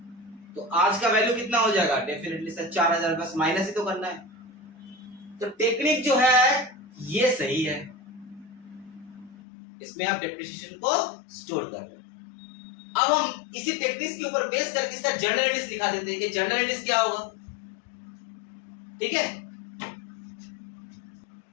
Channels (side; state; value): right; drops out; at 9.3 s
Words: तो आज का वैल्यू कितना हो जाएगा? डेफिनेटली सर 4,000, बस माइनस ही तो करना है। तो टेक्निक जो है ये सही है, इसमें आप डिप्रिसिएशन को स्टोर कर रहे हैं। अब हम इसी टेक्निक्स के ऊपर बेस करके इसका जनरल एंट्रीज दिखा देते हैं कि जनरल एंट्रीज क्या होगा। ठीक है,